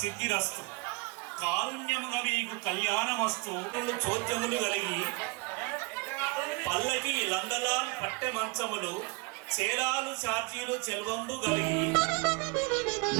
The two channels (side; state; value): left; quieter; 27.7 dB